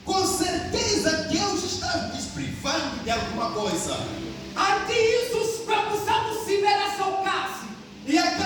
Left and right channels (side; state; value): both; identical; correlation 1.00